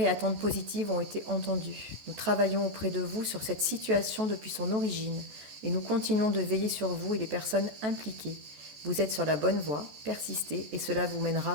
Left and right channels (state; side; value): late; left; 14 ms